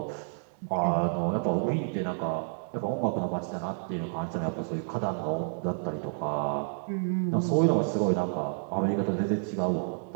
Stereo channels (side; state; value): left; silent; digital silence